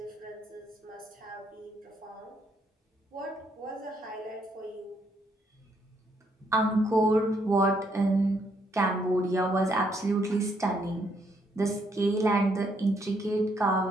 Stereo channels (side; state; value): both; normal; correlation 0.72